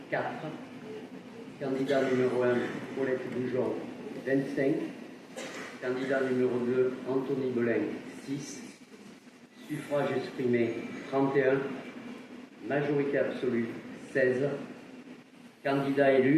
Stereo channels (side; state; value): both; identical; correlation 1.00